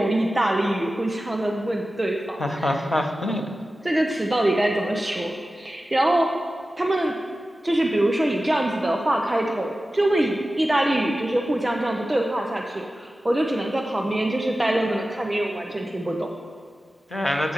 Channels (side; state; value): both; normal; correlation 0.95